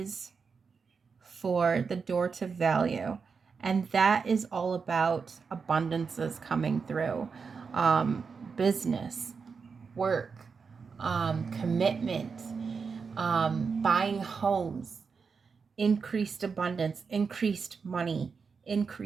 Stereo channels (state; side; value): quieter; left; 5.4 dB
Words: for the door to value. And that is all about abundances coming through. Business, work, commitment, buying homes, increased abundance, increased money,